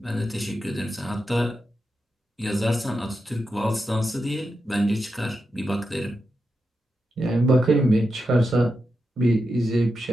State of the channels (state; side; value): normal; both; correlation 0.88